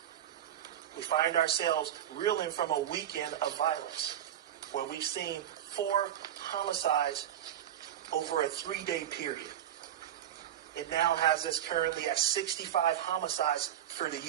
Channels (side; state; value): left; quieter; 11.0 dB